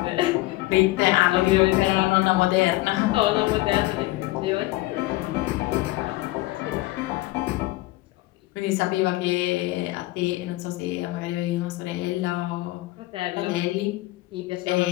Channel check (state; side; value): quieter; right; 19.2 dB